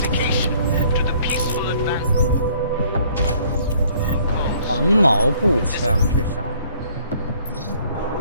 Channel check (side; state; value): both; inverted; correlation -0.59